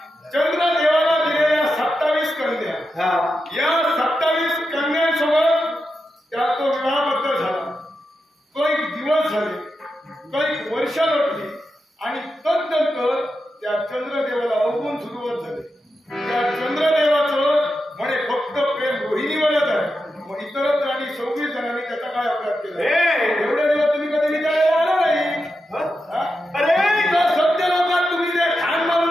चंद्रदेवाला दिलेल्या 27 कन्या, या 27 कन्यांसोबत त्या तो विवाहबद्ध झाला. काही दिवस झाले, काही वर्ष लोटली आणि तदनंतर त्या चंद्रदेवाला अवगुण सुरुवात झाली. त्या चंद्रदेवाचं म्हणे फक्त प्रेम रोहिणीवरच आहे. मग इतरत्र आणि 26 जणांनी त्याचा काय अपराध केला? एवढे दिवस तुम्ही कधी विचारायला आला नाही. अरे सत्य लोकात तुम्ही जे खान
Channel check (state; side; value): normal; both; correlation 0.88